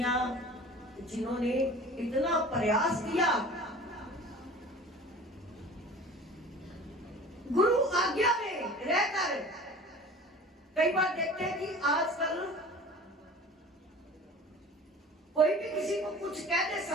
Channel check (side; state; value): both; normal; correlation 0.41